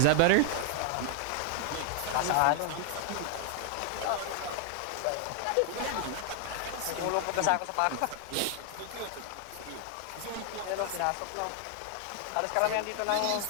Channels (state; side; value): different; both; correlation 0.00